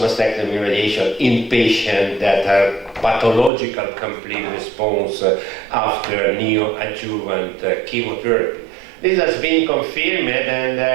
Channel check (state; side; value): drops out; left; at 3.5 s